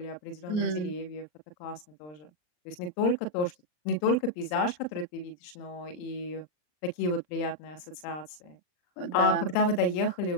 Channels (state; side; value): late; right; 39 ms